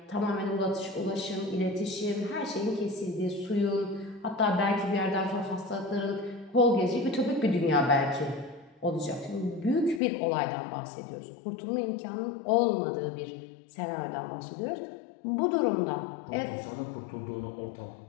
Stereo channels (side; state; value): right; drops out; at 10.0 s